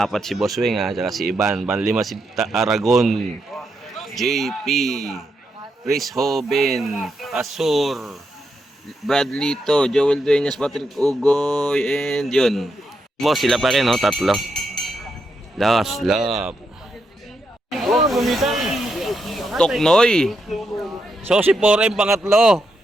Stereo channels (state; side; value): normal; both; correlation 0.82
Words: si Boss Weng ah, saka si Iban. Pang-5 si Aragon. JP. Chris Hoben, Asur, Bradley to, Joel Dueñas, Patrick Ugoy, and yun. Boss, sila pa rin, no? Tatlo. Last lap. Toknoy. So, si 4M pangatlo.